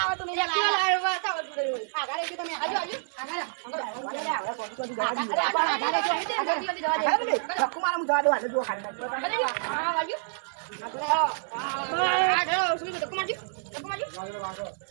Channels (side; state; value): left; silent; 59 dB below the other